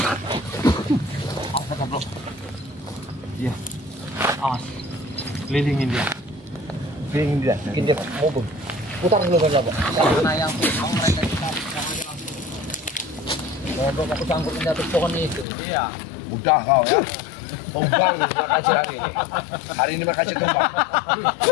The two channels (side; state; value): right; drops out; at 15.5 s